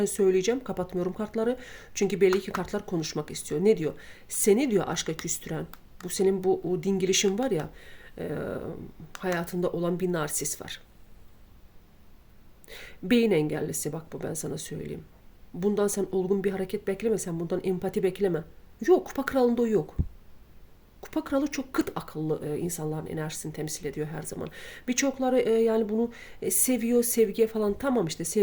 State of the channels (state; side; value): identical; both; correlation 1.00